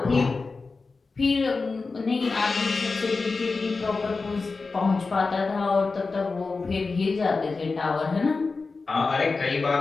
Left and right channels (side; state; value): right; quieter; 4.1 dB